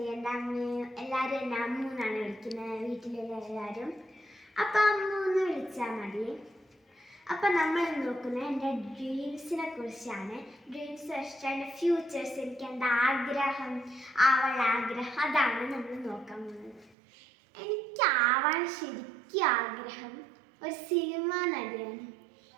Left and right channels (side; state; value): left; drops out; at 16.9 s